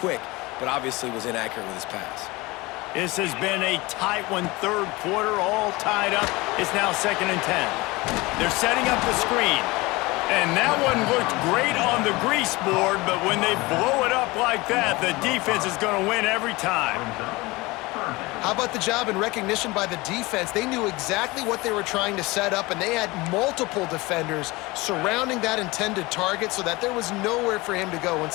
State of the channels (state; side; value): quieter; right; 22.4 dB